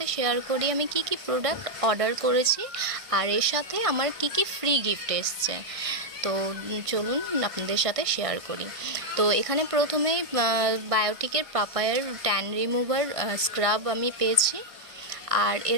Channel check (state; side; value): late; left; 1.5 ms